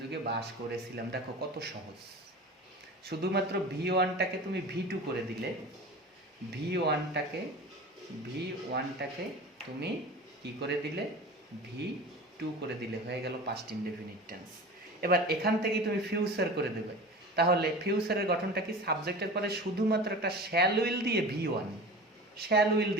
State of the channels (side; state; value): both; normal; correlation 0.35